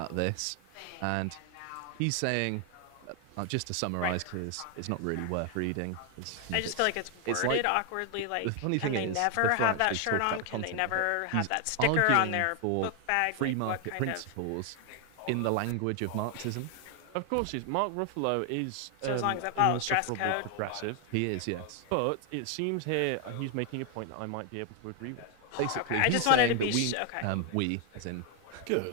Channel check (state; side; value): different; both; correlation 0.00